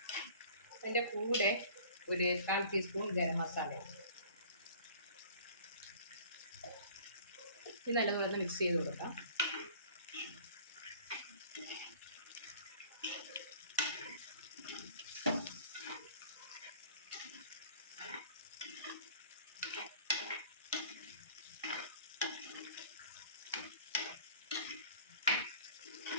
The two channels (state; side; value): inverted; both; correlation -0.48